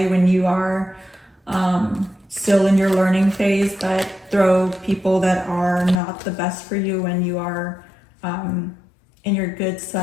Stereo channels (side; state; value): right; drops out; at 6.0 s